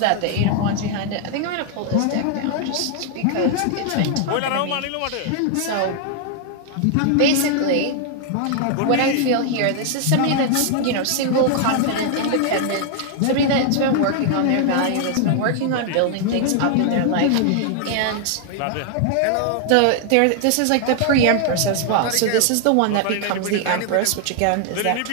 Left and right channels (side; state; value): both; different; correlation 0.00